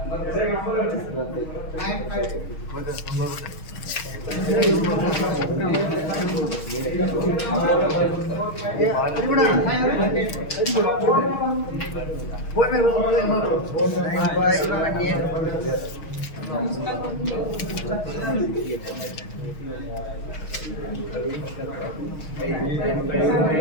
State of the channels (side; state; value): right; late; 6.4 ms